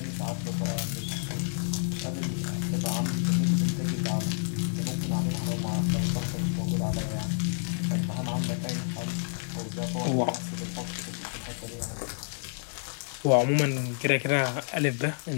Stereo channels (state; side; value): silent; right; digital silence